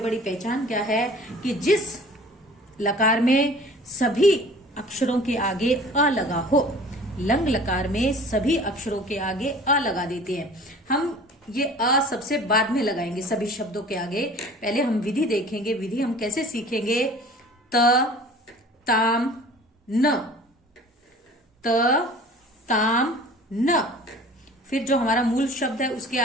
पहचान क्या है कि जिस लकार में सभी अक्षरों के आगे अ लगा हो, लंग लकार में सभी अक्षरों के आगे अ लगा देते हैं। हम ये अ सबसे बाद में लगाएंगे सभी शब्दों के आगे। पहले हम विधि देखेंगे। विधि हम कैसे सीखेंगे? त ताम न, त ताम न। फिर जो हमारा मूल शब्द है उसके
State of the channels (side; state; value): both; normal; correlation 0.46